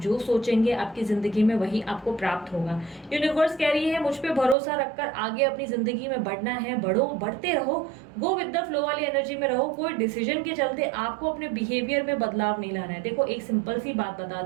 जो सोचेंगे आपकी जिंदगी में वही आपको प्राप्त होगा। यूनिवर्स कह रही है मुझ पे भरोसा रखकर आगे अपनी जिंदगी में बढ़ना है, बढ़ो, बढ़ते रहो, गो विद द फ्लो वाली एनर्जी में रहो। कोई डिसीजन के चलते आपको अपने बिहेवियर में बदलाव नहीं लाना है। देखो, एक सिंपल सी बात बता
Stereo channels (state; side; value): drops out; left; at 4.5 s